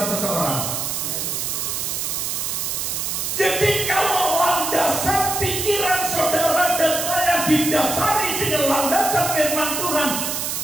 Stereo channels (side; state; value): right; noise; hiss, 2 dB below the sound